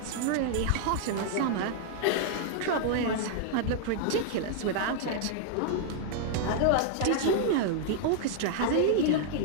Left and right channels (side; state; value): both; different; correlation -0.01